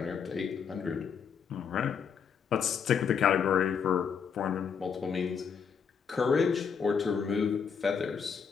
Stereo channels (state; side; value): quieter; right; 6.7 dB